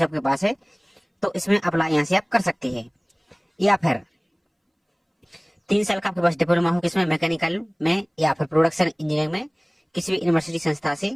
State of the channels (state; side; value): identical; both; correlation 1.00